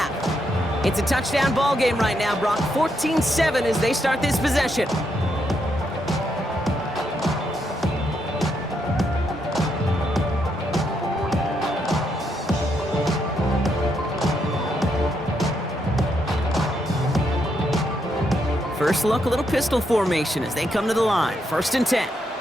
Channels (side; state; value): both; normal; correlation 0.79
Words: It's a touchdown ball game right now, Brock. 14-7 as they start this possession. First look, a little pistol formation as they come to the line. 1st and 10.